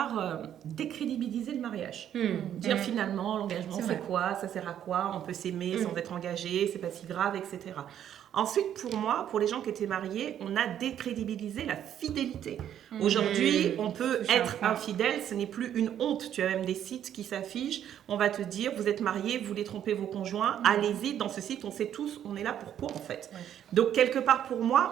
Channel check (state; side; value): quieter; left; 10.2 dB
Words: décrédibiliser le mariage. Dire finalement, l'engagement c'est quoi, ça sert à quoi, on peut s'aimer sans être engagé, c'est pas si grave, etc. Ensuite, pour moi, pour les gens qui étaient mariés, on a décrédibilisé la fidélité. Aujourd'hui, on peut être infidèle, ce n'est plus une honte. Tu as même des sites qui s'affichent, on va te dire, vous êtes mariés, vous voulez tromper vos conjoints, allez-y, dans ce site, on sait tous, on est là pour quoi en fait. Donc, quelque part pour